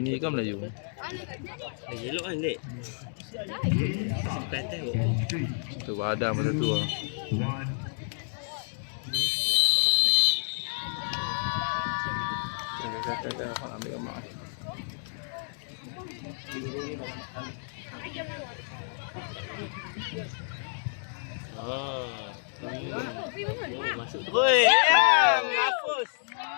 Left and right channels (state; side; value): silent; right; digital silence